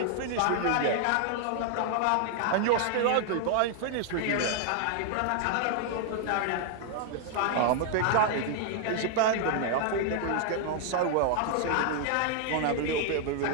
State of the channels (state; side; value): different; both; correlation 0.00